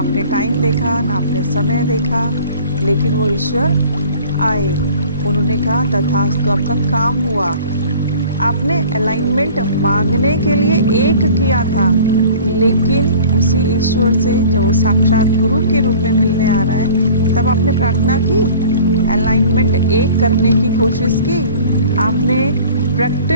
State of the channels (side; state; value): both; inverted; correlation -0.45